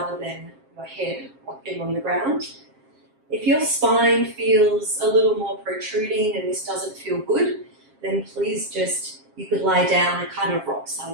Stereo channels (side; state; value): left; late; 7.5 ms